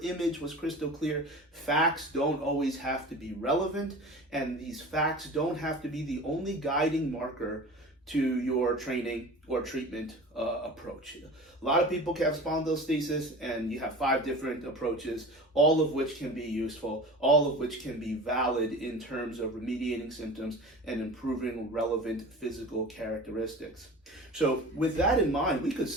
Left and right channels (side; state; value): both; normal; correlation 0.36